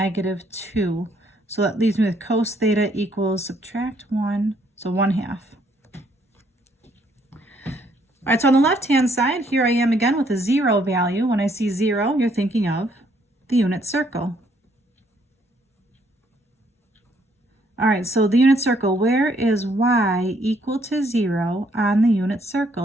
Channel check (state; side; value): normal; both; correlation 0.68